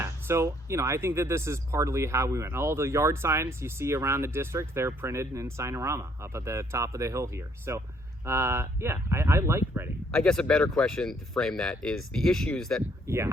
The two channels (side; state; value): both; normal; correlation 0.66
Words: so, you know, I think that this is partly how we went. All the yard signs you see around the district, they're printed in Signorama up at the top of the hill here. So, yeah, I like Redding. I guess a better question to frame that is the issues that